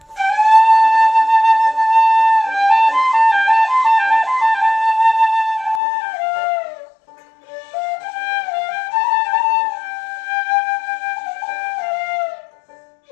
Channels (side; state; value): right; drops out; at 5.8 s